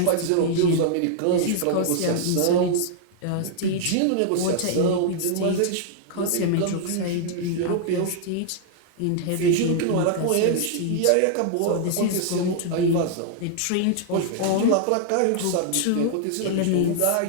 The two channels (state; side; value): different; both; correlation -0.01